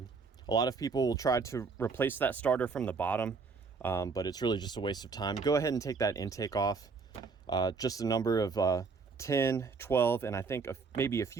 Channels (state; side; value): quieter; left; 4.9 dB